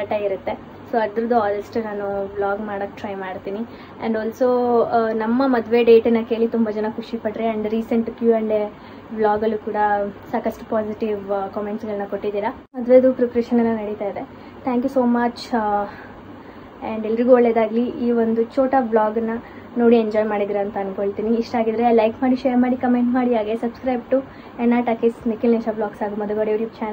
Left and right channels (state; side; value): identical; both; correlation 1.00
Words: ಇರುತ್ತೆ. ಸೊ ಅದ್ರದ್ದು ಆದಷ್ಟು ನಾನು ವ್ಲಾಗ್ ಮಾಡೋಕ್ಕೆ ಟ್ರೈ ಮಾಡ್ತೀನಿ. ಆ್ಯಂಡ್ ಆಲ್ಸೋ ನಮ್ಮ ಮದುವೆ ಡೇಟನ್ನು ಕೇಳಿ ತುಂಬ ಜನ ಖುಷಿಪಟ್ರೆ. ಆ್ಯಂಡ್ ರೀಸೆಂಟ್ Q&A ವ್ಲಾಗಲ್ಲೂ ಕೂಡ ಸಾಕಷ್ಟು ಪಾಸಿಟಿವ್ ಕಾಮೆಂಟ್ಸ್ಗಳನ್ನ ಕೊಟ್ಟಿದ್ದೀರಾ. ಮದುವೆದು ಪ್ರಿಪ್ರೇಷನ್ ಎಲ್ಲ ನಡೀತಾ ಇದೆ. Thank you so much. And ಎಲ್ರಿಗೂ ಒಳ್ಳೆಯದಾಗಲಿ. ಈ ಒಂದು ಛೋಟಾ ವ್ಲಾಗನ್ನು ನೋಡಿ ಎಂಜಾಯ್ ಮಾಡಿದ್ದೀರಾ ಅಂತ ಅಂದ್ಕೊಳ್ತೀನಿ. ಇಷ್ಟ ಆಗಿದ್ರೆ ಲೈಕ್ ಮಾಡಿ, ಶೇರ್ ಮಾಡಿ, ಕಮೆಂಟ್ ಮಾಡಿ. ಹಾಗೆ ಸಬ್ಸ್ಕ್ರೈಬ್ ಟು ಎನ್ನ ಟಾಕೀಸ್ ನಿಖಿಲ್ ನಿಶಾ ಬ್ಲಾಗ್ಸ್ ಹಾಗೂ Madhugowda YouTube